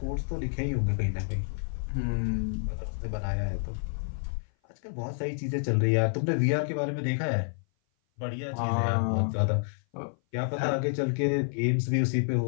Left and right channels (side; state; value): right; silent; 56 dB below the other